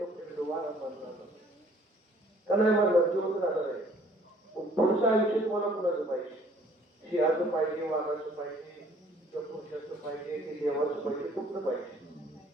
फिर दोबारा मरना का नाही मरणार जीवन राहणार आहे पुढचं आयुष्य तुम्हाला कुणाचं पाहिजे सिंहाचं पाहिजे वाघाचं पाहिजे किंवा पुरुषाचं पाहिजे की देवाचं पाहिजे कुठलं पाहिजे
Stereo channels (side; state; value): both; normal; correlation 0.58